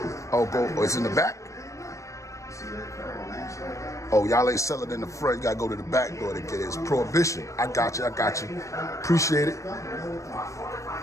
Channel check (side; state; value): right; late; 0.15 ms